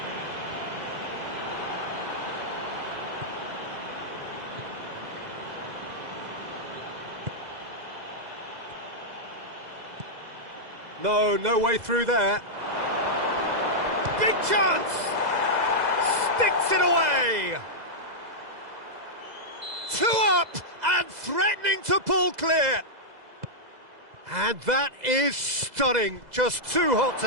No way through there. Big chance! Sticks it away! 2 up and threatening to pull clear. And that is stunning. Just too hot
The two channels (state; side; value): late; left; 2.0 ms